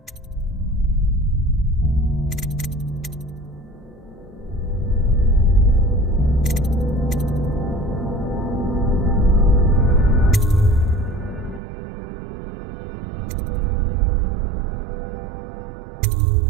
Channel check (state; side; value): drops out; left; at 11.6 s